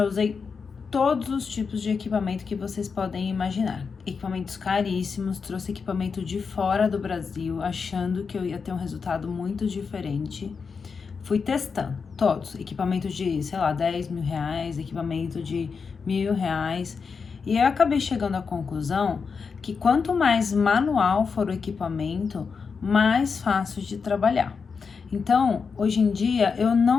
usei todos os tipos de equipamento que vocês podem imaginar. Equipamentos caríssimos, trouxe equipamento de fora do Brasil, achando que eu ia ter um resultado muito diferente. Fui testando todos, equipamento de, sei lá, 10 mil reais, equipamento de R$ 1.000. E eu acabei chegando à conclusão que quanto mais manual for o equipamento, mais fácil de trabalhar. Então, hoje em dia, eu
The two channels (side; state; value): right; quieter; 5.4 dB